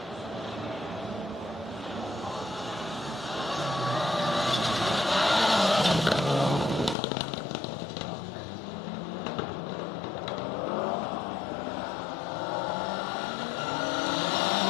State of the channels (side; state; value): right; drops out; at 7.0 s